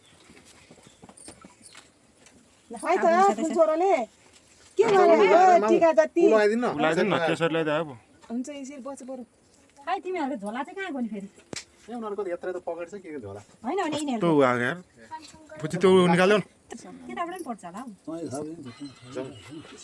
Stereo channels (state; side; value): identical; both; correlation 1.00